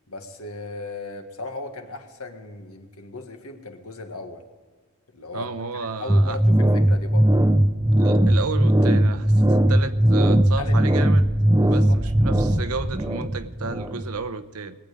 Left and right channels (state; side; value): normal; both; correlation 0.90